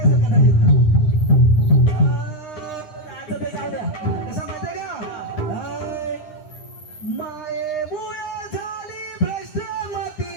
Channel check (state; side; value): late; right; 9.8 ms